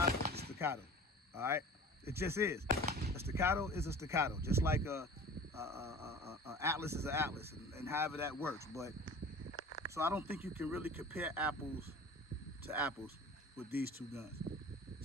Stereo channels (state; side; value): normal; both; correlation 0.40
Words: is a Staccato. All right, it just is. A Staccato is a Staccato, just like a Atlas is an Atlas, and however that works. But so I don't think you can really compare apples to apples with these two guns.